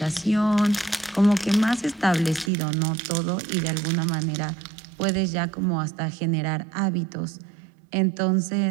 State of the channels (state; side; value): drops out; left; at 2.5 s